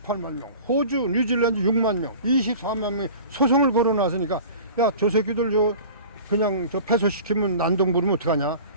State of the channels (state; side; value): inverted; both; correlation -0.40